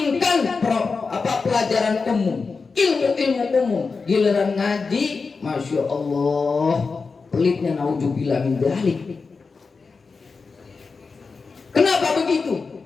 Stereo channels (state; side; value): quieter; right; 4.6 dB